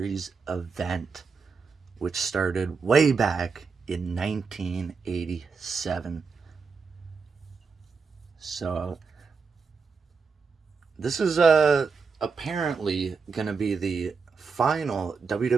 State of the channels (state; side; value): quieter; left; 5.1 dB